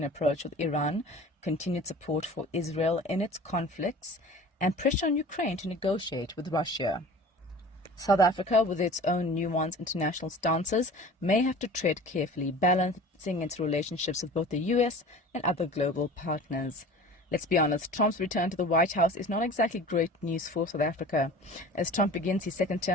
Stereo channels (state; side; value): normal; both; correlation 0.41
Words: approach with Iran, continued support for Israel in its conflicts, and pressure on Ukraine to negotiate with Russia. South Africa, with its own nuanced international stances, may have to tread carefully, balancing its relationships with both the U.S. and other global partners. Let's be honest, Trump's return to the White House is not exactly great news for South Africa. As Trump begins his second